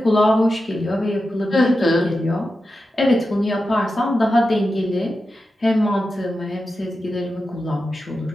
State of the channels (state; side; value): normal; both; correlation 0.91